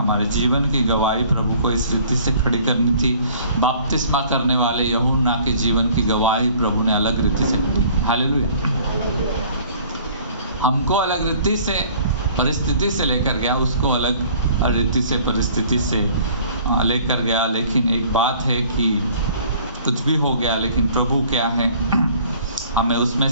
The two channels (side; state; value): both; inverted; correlation -0.53